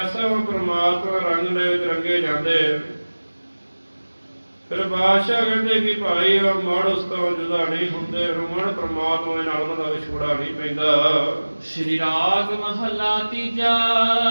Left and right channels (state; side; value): inverted; both; correlation -1.00